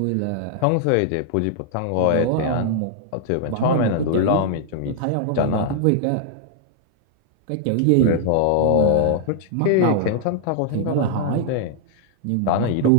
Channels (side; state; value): both; different; correlation -0.01